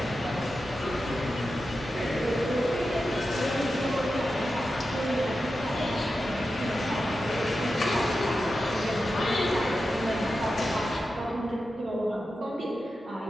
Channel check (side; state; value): both; normal; correlation 0.91